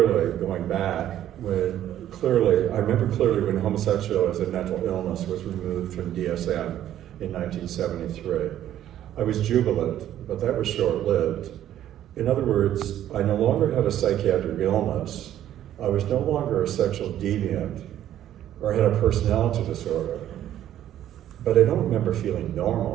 going back when homosexuality as a mental illness was removed from DSM in 1973. I was jubilant, but that was short-lived. In other words, I no longer had a psychiatric illness. I was no longer a sexual deviant or had a personality disorder. But I don't remember feeling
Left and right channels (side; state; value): left; quieter; 11.7 dB